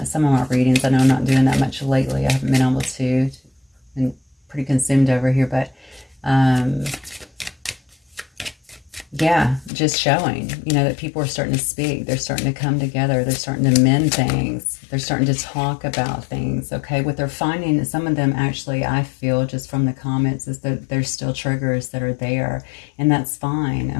some of my readings. I know I'm not doing that much lately. I haven't been able to. Been pretty consumed over here, but yeah, just showing, you know, that people are starting to speak. They're starting to come together. They're starting to mend things. They're starting to talk about things, okay? What they're finding, some of them actually, I feel just from the comments, is that there's still triggers that are there. And that's fine,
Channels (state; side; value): drops out; right; at 9.7 s